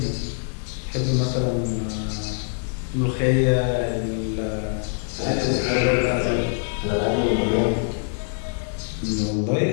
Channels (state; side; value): silent; right; 63 dB below the other